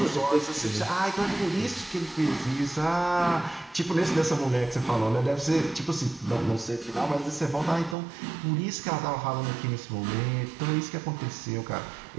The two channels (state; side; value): drops out; left; at 8.0 s